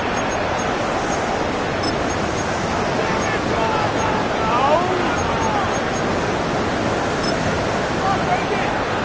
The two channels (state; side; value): identical; both; correlation 1.00